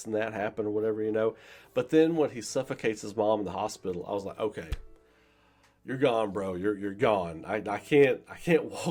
and that happen or whatever, you know. But then when he suffocates his mom in the hospital, I was like, okay, you're gone, bro. You're gone. I can't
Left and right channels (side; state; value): both; identical; correlation 1.00